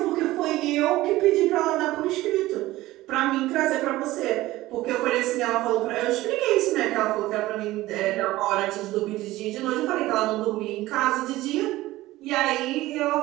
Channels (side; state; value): left; quieter; 17.2 dB